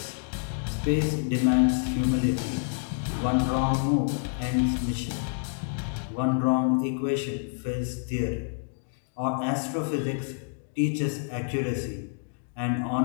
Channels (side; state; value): right; silent; digital silence